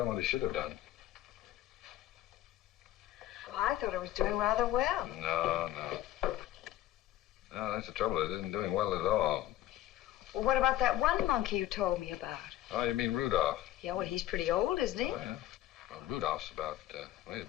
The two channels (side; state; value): right; quieter; 13.9 dB